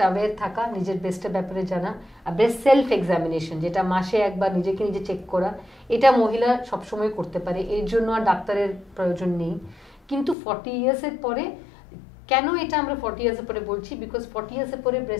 অ্যাওয়্যার থাকা, নিজের ব্রেস্টের ব্যাপারে জানা, আর ব্রেস্ট সেলফ এক্সামিনেশন যেটা মাসে একবার নিজেকে নিজে চেক করা, এটা মহিলা সবসময় করতে পারে, এর জন্য আর ডাক্তারের প্রয়োজন নেই। কিন্তু 40 ইয়ার্সের পরে, কেন এটা আমরা 40 ইয়ার্সের পরে বলছি, বিকজ 40 ইয়ার্সের পরে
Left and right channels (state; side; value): drops out; right; at 10.4 s